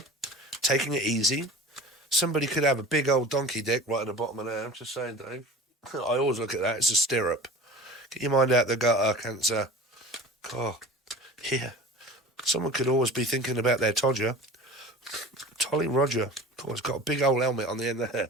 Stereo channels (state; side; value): normal; both; correlation 0.39